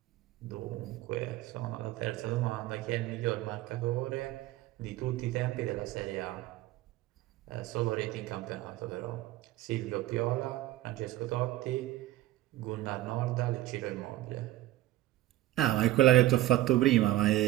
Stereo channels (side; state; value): left; quieter; 15.7 dB